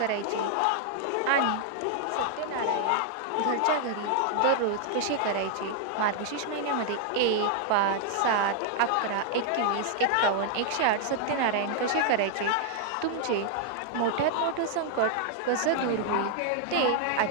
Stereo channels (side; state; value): both; different; correlation 0.00